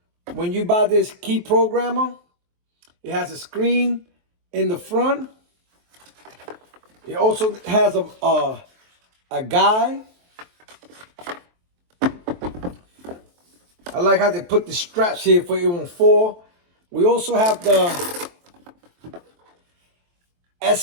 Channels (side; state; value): left; late; 23 ms